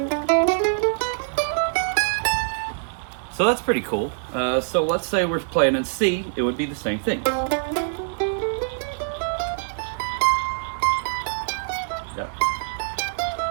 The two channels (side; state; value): left; silent; digital silence